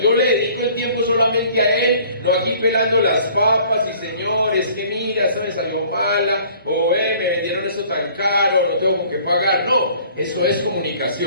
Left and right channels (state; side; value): inverted; both; correlation -0.53